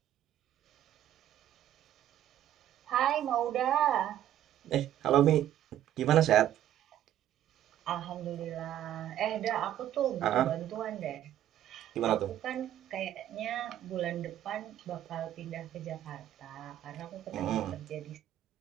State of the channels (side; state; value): left; quieter; 11.8 dB